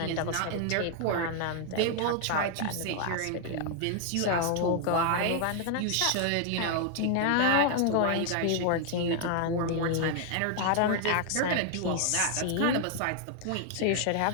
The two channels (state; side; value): different; both; correlation 0.00